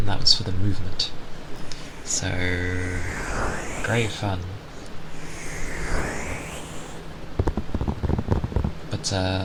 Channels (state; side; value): identical; both; correlation 1.00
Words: that was for the movement. So great fun. But